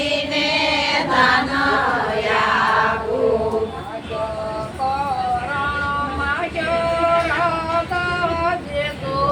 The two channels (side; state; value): both; identical; correlation 1.00